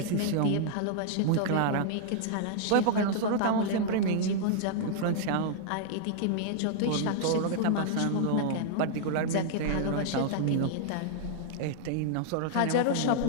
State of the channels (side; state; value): both; different; correlation -0.01